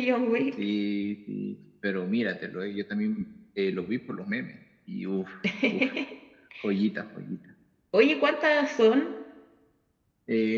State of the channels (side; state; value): both; identical; correlation 1.00